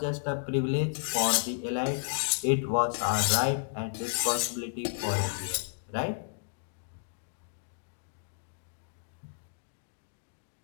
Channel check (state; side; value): silent; right; digital silence